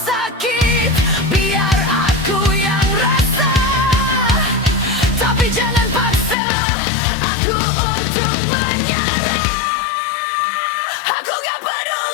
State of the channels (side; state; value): right; drops out; at 6.4 s